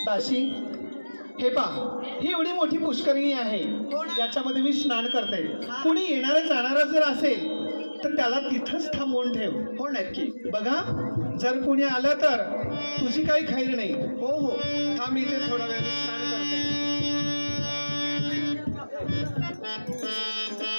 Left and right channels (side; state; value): both; inverted; correlation -1.00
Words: दासी, हे पहा, ही एवढी मोठी पुष्करिणी आहे. याच्यामध्ये मी स्नान करते. कुणी येणारा जाणारा जर असेल तर त्याला तिथंच थांबवून ठेव. हो नक्की. बघा, जर कोणी आलं तर तुझी काही खैर नाही. हो हो. थांब इथे थोडा वेळ, मी स्नान करते.